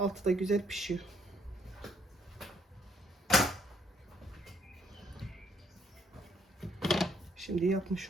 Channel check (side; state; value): both; normal; correlation 0.68